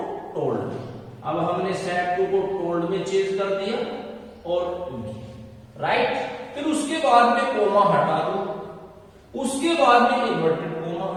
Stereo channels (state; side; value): identical; both; correlation 1.00